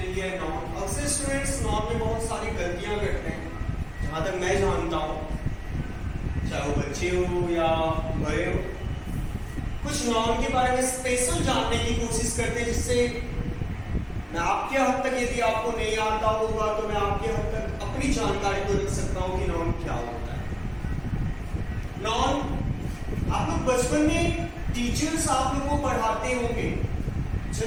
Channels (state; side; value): identical; both; correlation 1.00